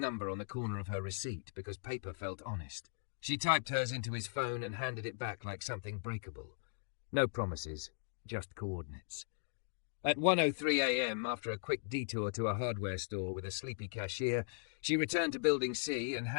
on the corner of her receipt because paper felt honest. She typed hers into his phone and handed it back like something breakable. No promises, just coordinates. At 1:03 a.m., after a quick detour to a hardware store with a sleepy cashier, she returned to Building C and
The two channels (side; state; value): right; silent; digital silence